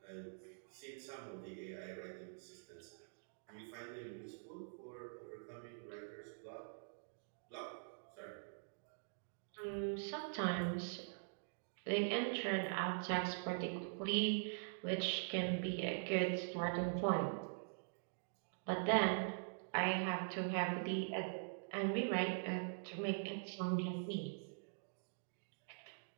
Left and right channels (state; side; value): silent; left; digital silence